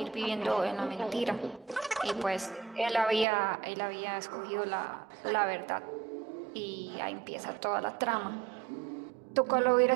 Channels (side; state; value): left; drops out; at 3.2 s